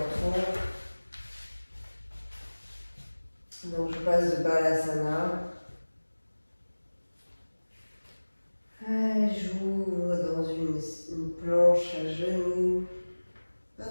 Donc je passe de Balasana. J'ouvre dans une planche à genoux, pas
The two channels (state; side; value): inverted; both; correlation -1.00